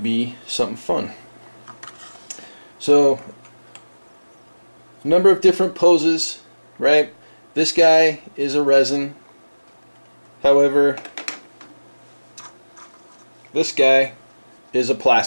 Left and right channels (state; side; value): inverted; both; correlation -1.00